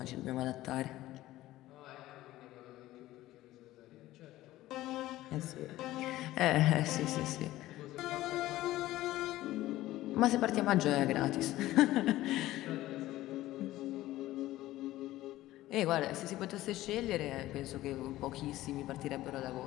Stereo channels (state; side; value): quieter; right; 15.9 dB